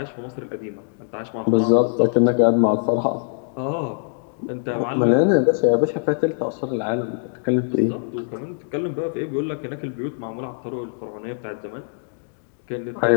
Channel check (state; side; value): silent; right; digital silence